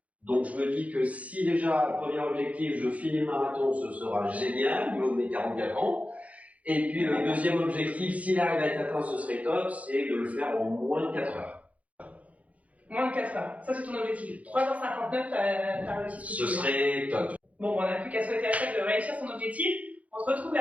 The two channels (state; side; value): late; left; 0.068 ms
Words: Donc, je me dis que si déjà, premier objectif, je finis le marathon, ce sera génial, au niveau de mes 44 ans. Et puis, le deuxième objectif, s'il arrive à être atteint, ce serait top, c'est de le faire en moins de 4 heures. Moins de 4 heures. Ça, c'est ton objectif. 3h59, t'as réussi ce que tu veux. Ce serait top. Bon, on n'a plus qu'à souhaiter à chaque de réussir son objectif. On se retrouve